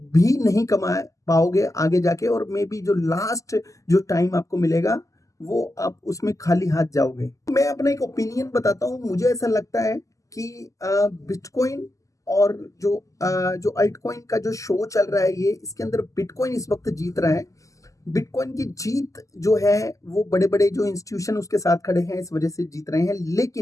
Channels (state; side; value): late; right; 0.16 ms